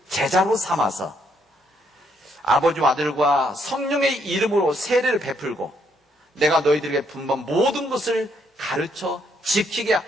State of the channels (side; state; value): both; normal; correlation 0.72